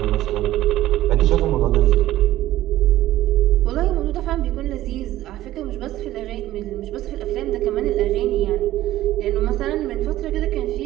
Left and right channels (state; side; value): quieter; left; 14.7 dB